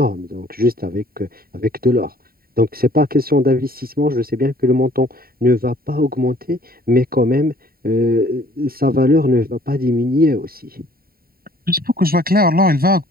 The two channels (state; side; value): late; left; 0.43 ms